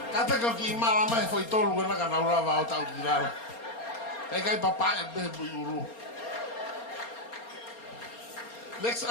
Kata kau ki malama e foi tolu na kana ura va o tau kirara. Kai kai papa e be buiuru. Next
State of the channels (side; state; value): right; late; 4.3 ms